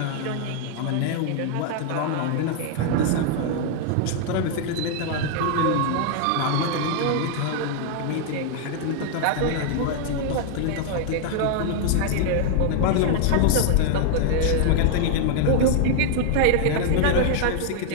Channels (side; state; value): both; different; correlation 0.00